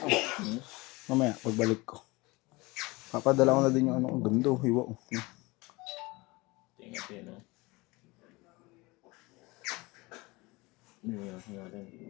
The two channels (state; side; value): quieter; right; 23.5 dB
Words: Mamaya, pagbalik ko. Papadala ko na din yung ano, ang ganda, hiwa ko. Tingnan natin, no?